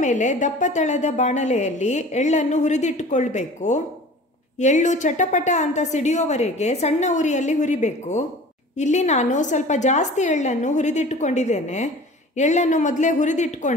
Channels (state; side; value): normal; both; correlation 0.42